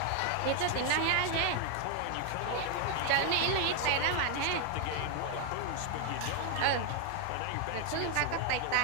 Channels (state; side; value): different; both; correlation 0.00